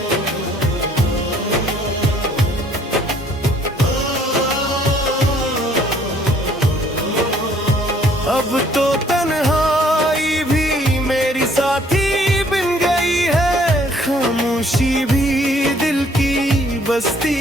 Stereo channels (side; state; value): both; normal; correlation 0.61